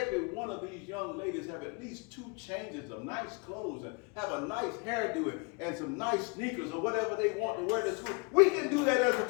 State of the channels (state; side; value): quieter; right; 32.2 dB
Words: one of these young ladies have at least 2 changes of nice clothes and have a nice hairdo and some nice sneakers or whatever they want to wear to school. We can do that as a